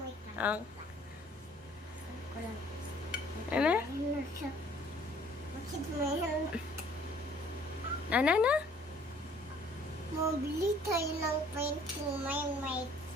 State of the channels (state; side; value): normal; both; correlation 0.56